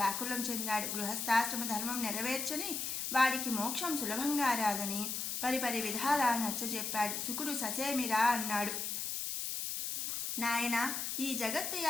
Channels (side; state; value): left; noise; hiss, 2 dB below the sound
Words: చెందాడు. గృహస్థాశ్రమ ధర్మం నెరవేర్చని వాడికి మోక్షం సులభంగా రాదని పరిపరి విధాలా నచ్చజెప్పాడు. శుకుడు ససేమిరా అన్నాడు. నాయన, ఈ జగత్తు